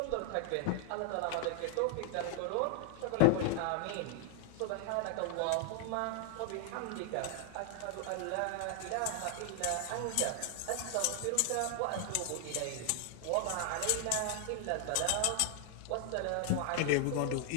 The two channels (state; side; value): different; both; correlation 0.00